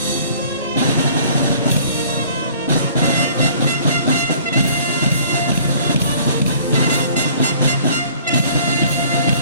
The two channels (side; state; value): both; inverted; correlation -0.54